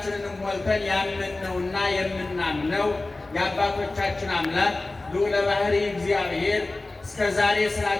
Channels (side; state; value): right; quieter; 3.1 dB